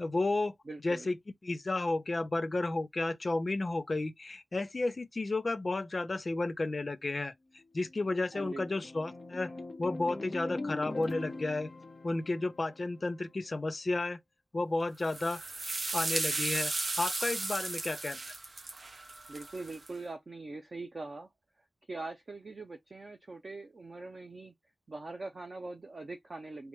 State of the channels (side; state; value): both; normal; correlation 0.97